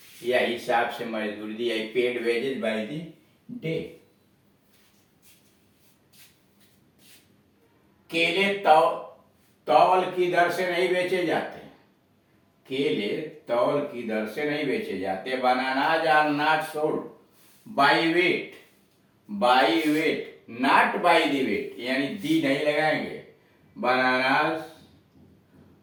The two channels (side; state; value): both; identical; correlation 1.00